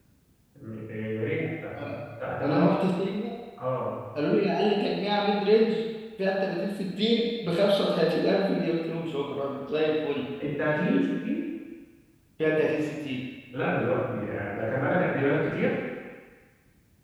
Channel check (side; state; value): both; identical; correlation 1.00